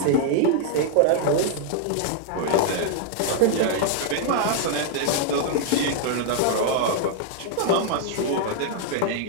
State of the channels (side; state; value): both; different; correlation 0.00